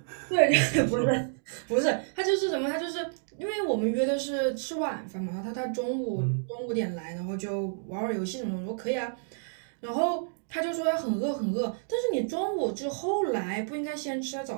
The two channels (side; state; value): left; silent; digital silence